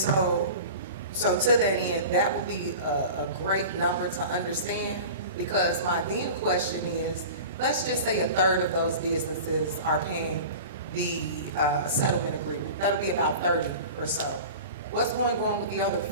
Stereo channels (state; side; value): inverted; both; correlation -0.36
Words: to that end, that would be a great number to understand, because my then question is, let's just say a third of those businesses are paying the settlement agreement. That'll be about 30 or so. What's going on with the other